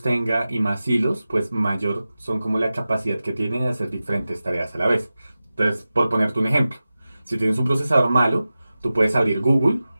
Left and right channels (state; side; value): inverted; both; correlation -0.95